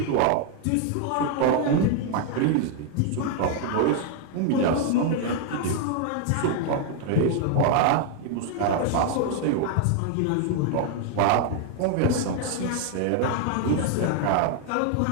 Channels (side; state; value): both; different; correlation 0.00